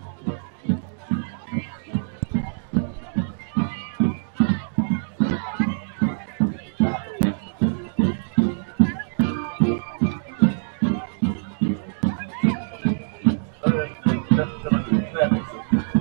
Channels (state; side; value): silent; left; digital silence